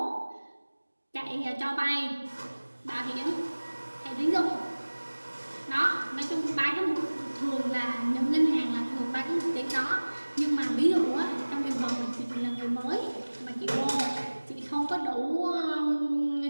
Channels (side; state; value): both; inverted; correlation -1.00